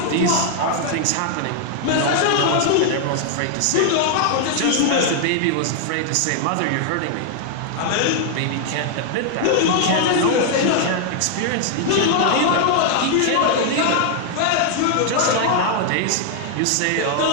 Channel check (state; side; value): different; both; correlation 0.00